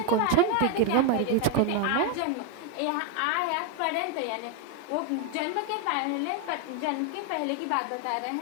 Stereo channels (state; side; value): different; both; correlation 0.01